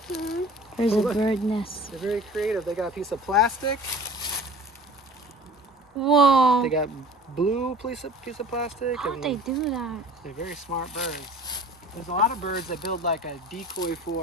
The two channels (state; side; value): normal; both; correlation 0.44